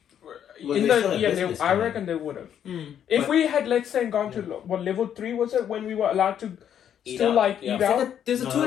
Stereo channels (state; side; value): quieter; right; 9.4 dB